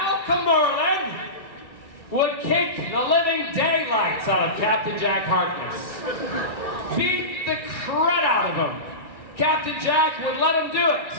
Merlin would kick the living daylights out of Captain Jack Harkness. Beat the crud out of him. Captain Jack would let him do it.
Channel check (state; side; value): late; right; 1.5 ms